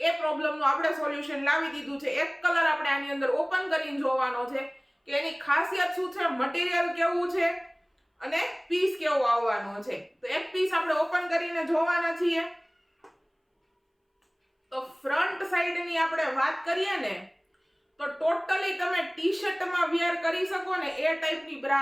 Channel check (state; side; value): identical; both; correlation 1.00